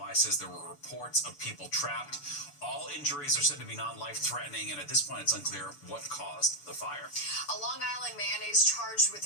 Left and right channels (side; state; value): right; late; 6.9 ms